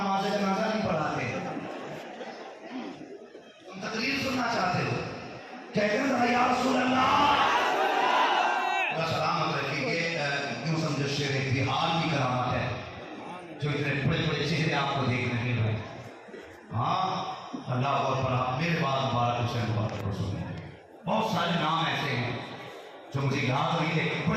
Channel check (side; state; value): both; identical; correlation 1.00